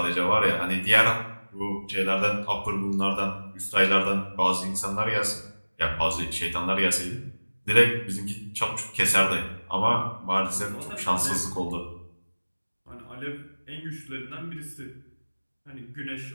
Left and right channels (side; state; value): both; inverted; correlation -1.00